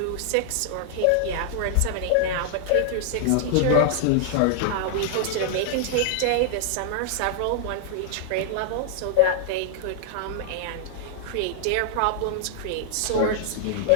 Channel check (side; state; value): both; different; correlation 0.00